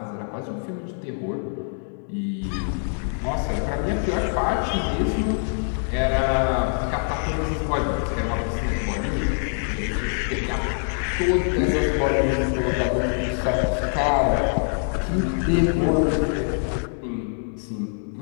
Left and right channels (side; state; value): right; silent; 59 dB below the other